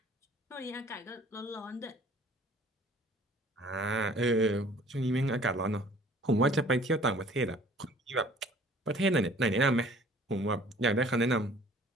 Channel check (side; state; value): both; normal; correlation 0.53